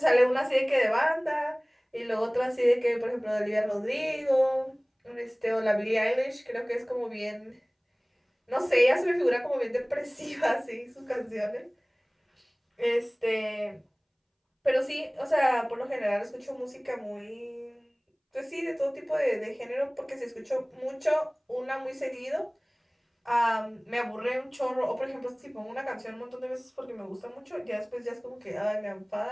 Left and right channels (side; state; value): both; identical; correlation 1.00